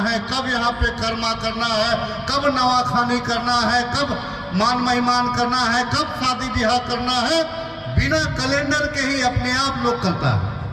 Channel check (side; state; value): both; identical; correlation 1.00